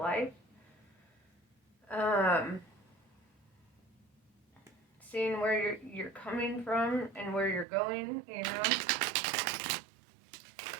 Seeing where you're coming from and where you're going,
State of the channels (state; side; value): drops out; left; at 7.7 s